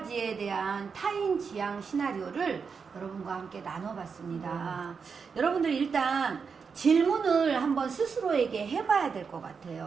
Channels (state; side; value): quieter; left; 5.7 dB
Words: 대한 타인 지향 시나리오를 여러분과 함께 나눠봤습니다. 여러분들 일단 질문을 한번 스스로에게 해봐야 될 것